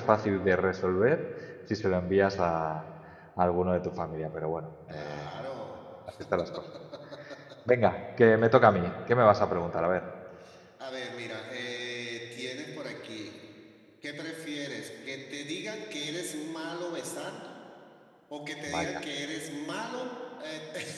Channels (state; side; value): identical; both; correlation 1.00